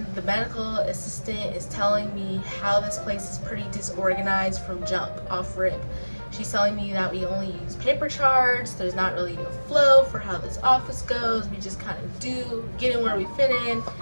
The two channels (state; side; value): inverted; both; correlation -1.00